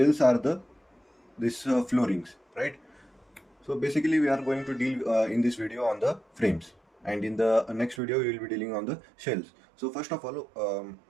are the this floorings, right? So basically, we are going to deal in this video on the frames, and in the next video, we will be dealing on the shells. So first of all,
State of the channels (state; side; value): drops out; left; at 8.0 s